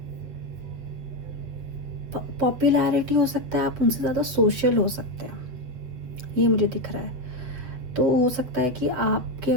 पॉपुलैरिटी हो सकता है, आप उनसे ज़्यादा सोशल हो सकते हैं, ये मुझे दिख रहा है। तो हो सकता है कि आपके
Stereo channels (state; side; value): late; left; 8.0 ms